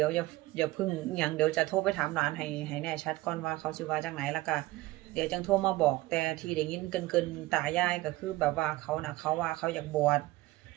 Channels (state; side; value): quieter; left; 18.7 dB